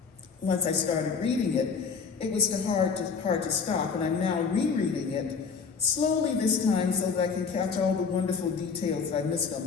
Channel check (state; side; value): quieter; right; 5.5 dB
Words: Once I started reading it, it was hard to stop, and I'm now rereading it slowly this time so that I can catch all the wonderful details that I missed on